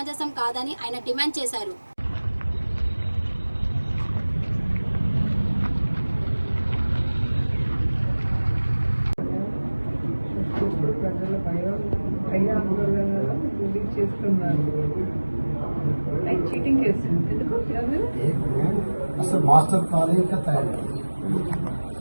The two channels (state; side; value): inverted; both; correlation -1.00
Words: కాదని ఆయన డిమాండ్ చేశారు. అసలు మాస్టర్ ప్లాన్ ఇంకా తయారు